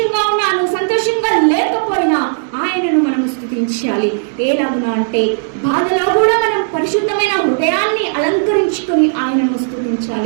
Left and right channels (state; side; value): silent; left; digital silence